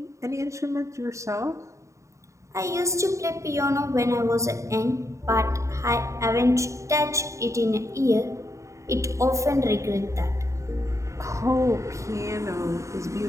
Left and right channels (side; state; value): left; late; 0.15 ms